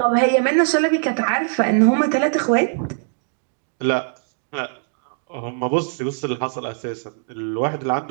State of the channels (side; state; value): left; silent; digital silence